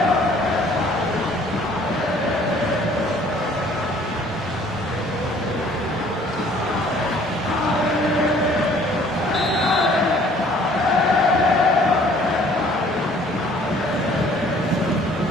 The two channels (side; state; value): both; normal; correlation 0.56